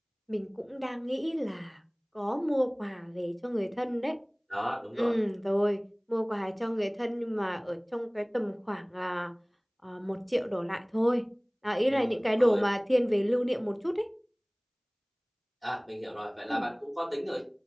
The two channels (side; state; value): both; identical; correlation 1.00